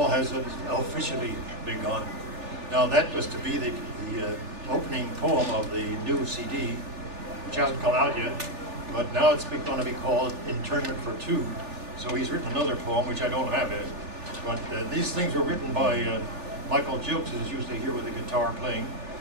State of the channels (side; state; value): left; late; 3.4 ms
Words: has officially begun. Now that was to be the opening poem of the new CD, which hasn't come out yet, but now it's going to be called Internment for Two. So he's written another poem, which I don't have yet. But these things were written by Michael Jilks, who's usually here with the guitar playing,